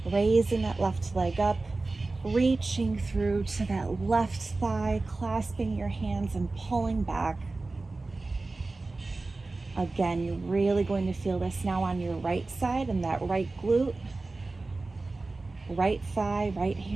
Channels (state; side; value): quieter; left; 3.4 dB